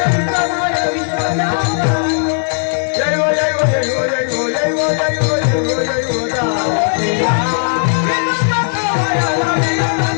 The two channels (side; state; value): right; silent; 64 dB below the other